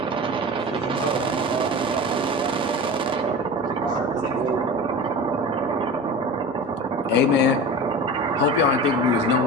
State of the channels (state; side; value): normal; both; correlation 0.32